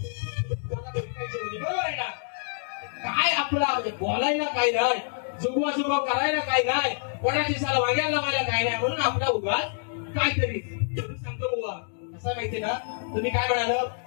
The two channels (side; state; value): right; silent; digital silence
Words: बरोबर आहे ना. काय आपला बोलायला काय नाही, जुगवा करायला काय नाही, कोणाची साला वाग्याला लावायला काय नाही, म्हणून आपला उगाच काहीतरी सांगतो बुवा. असं माहिती ना, तुम्ही काय म्हणाल